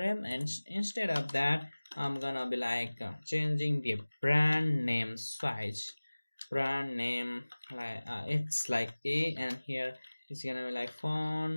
and instead of that I'm gonna be like changing the brand name size. Brand name like it's like A, and here it's gonna be like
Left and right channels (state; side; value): inverted; both; correlation -1.00